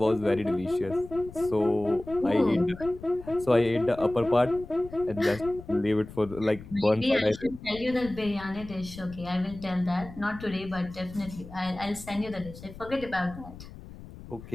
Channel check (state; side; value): noise; left; rumble, 15 dB below the sound